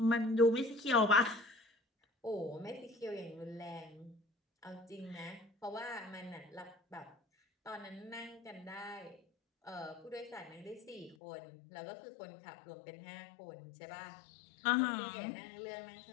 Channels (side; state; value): right; drops out; at 11.2 s